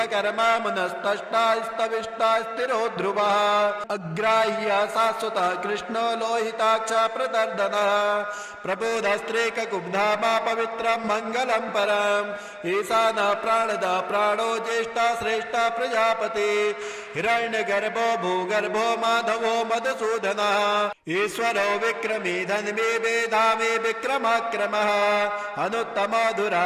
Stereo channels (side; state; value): both; identical; correlation 1.00